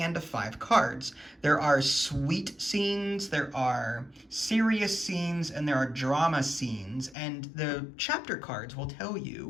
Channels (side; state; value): right; drops out; at 7.2 s